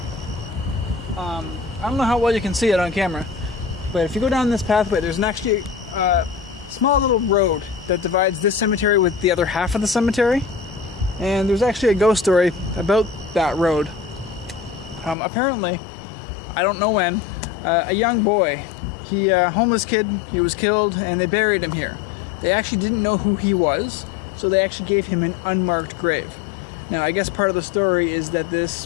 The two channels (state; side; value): drops out; right; at 15.2 s